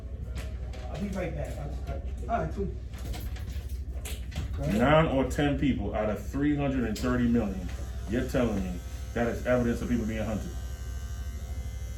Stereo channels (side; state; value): both; identical; correlation 1.00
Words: I'll be right back. All right, cool. 9 or 10 people out of 330 million, you're telling me that is evidence of people being hunted.